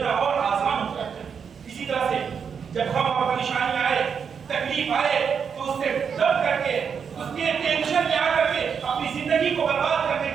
اور آسان ہو جاتا ہے. اسی طرح سے جب غم اور پریشانی آئے، تکلیف آئے تو اس سے دب کر کے، اس کے ٹینشن میں آ کر کے اپنی زندگی کو برباد کرنے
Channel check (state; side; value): quieter; left; 6.7 dB